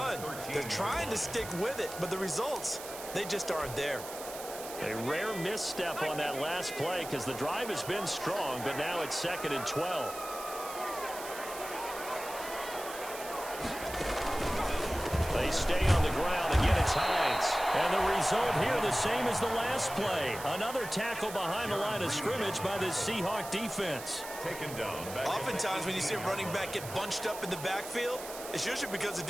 They're trying to stick with it, but the results, they just aren't there. A rare misstep on that last play because the drive has been strong, but now it's 2nd and 12. They stay on the ground. Again, it's Hines. And the result here the same as the last play. Another tackle behind the line of scrimmage by the Seahawk defense. Taken down. Oftentimes when you see a running back get bunched up in the backfield, it's usually because the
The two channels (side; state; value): right; noise; hiss, 11 dB below the sound